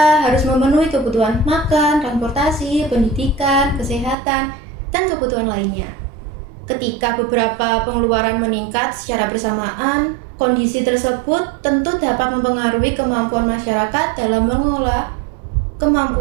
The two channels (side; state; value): left; drops out; at 4.2 s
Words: harus memenuhi kebutuhan makan, transportasi, pendidikan, kesehatan, dan kebutuhan lainnya. Ketika beberapa pengeluaran meningkat secara bersamaan, kondisi tersebut tentu dapat mempengaruhi kemampuan masyarakat dalam mengelola